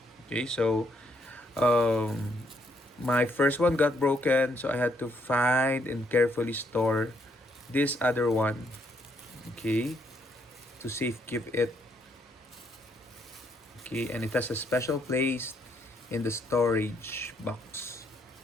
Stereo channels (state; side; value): normal; both; correlation 0.73